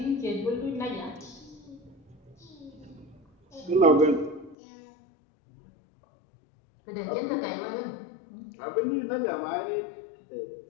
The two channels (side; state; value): right; drops out; at 4.5 s